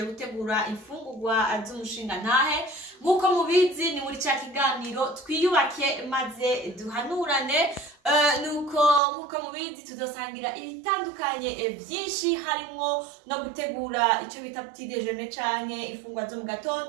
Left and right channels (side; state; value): left; drops out; at 9.0 s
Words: gutegura imfungurwa z'umushinga ntahe. Nkuko mubizi ni muri cya kiganiro twiyubake maze duhanurane. Nkuko mubizi tuzosangira ibitandukanye byinshi, harimo no gutegura icyo bita petit déjeuner canke ifungwa zo mu